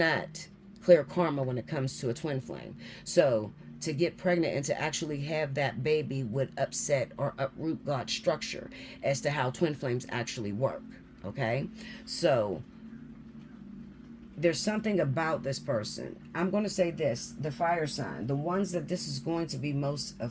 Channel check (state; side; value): identical; both; correlation 1.00